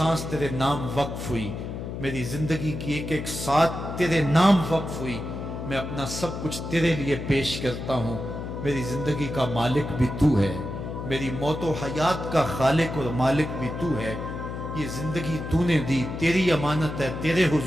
تیرے نام وقف ہوئی، میری زندگی کی ایک ایک ساتھ تیرے نام وقف ہوئی، میں اپنا سب کچھ تیرے لیے پیش کرتا ہوں۔ میری زندگی کا مالک بھی تو ہے، میری موت و حیات کا خالق اور مالک بھی تو ہے، یہ زندگی تو نے دی، تیری امانت ہے، تیرے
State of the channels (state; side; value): noise; left; hum, 7 dB below the sound